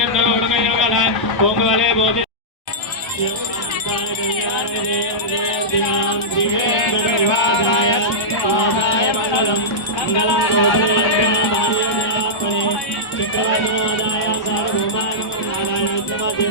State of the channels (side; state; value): right; late; 1.0 ms